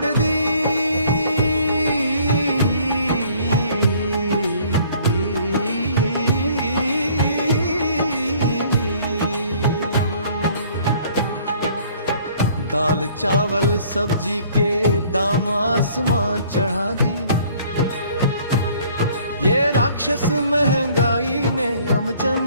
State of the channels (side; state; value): both; inverted; correlation -0.57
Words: दी। दाल चावल सब्जी के दाम आसमां चढ़ा दी, ये राक्षस महंगाई ने हम